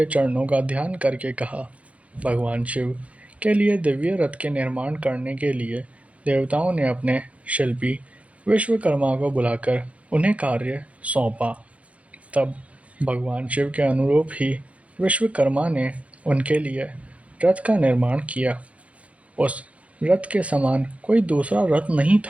चरणों का ध्यान करके कहा, भगवान शिव के लिए दिव्य रथ के निर्माण करने के लिए देवताओं ने अपने शिल्पी विश्वकर्मा को बुलाकर उन्हें कार्य सौंपा। तब भगवान शिव के अनुरूप ही विश्वकर्मा ने उनके लिए रथ का निर्माण किया। उस रथ के समान कोई दूसरा रथ नहीं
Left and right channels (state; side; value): late; left; 0.065 ms